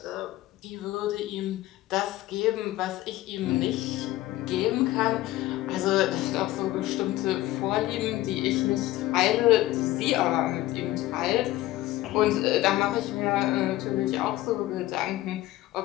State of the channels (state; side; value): quieter; right; 16.3 dB